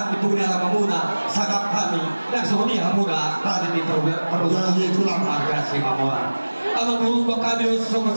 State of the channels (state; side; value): inverted; both; correlation -1.00